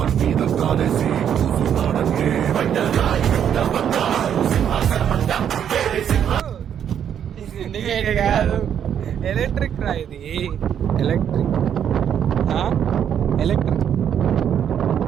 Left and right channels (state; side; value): quieter; left; 9.0 dB